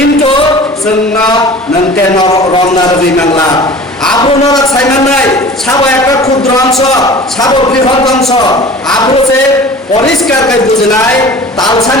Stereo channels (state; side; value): normal; both; correlation 0.42